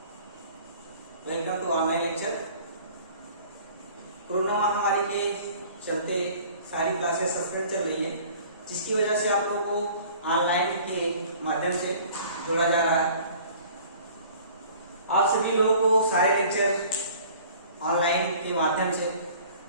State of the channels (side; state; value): both; inverted; correlation -0.49